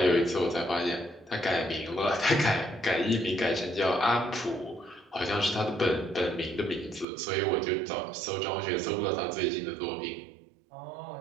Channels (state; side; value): drops out; left; at 7.1 s